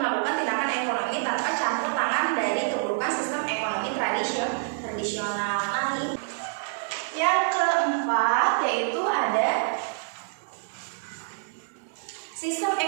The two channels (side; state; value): left; silent; digital silence